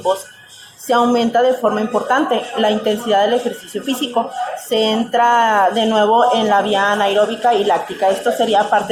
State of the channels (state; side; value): identical; both; correlation 1.00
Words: se aumenta de forma importante la intensidad del ejercicio físico. Se entra de nuevo en la vía anaeróbica y láctica. Esto sería